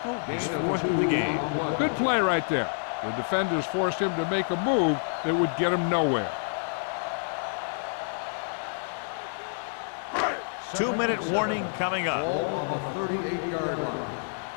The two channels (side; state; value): right; silent; digital silence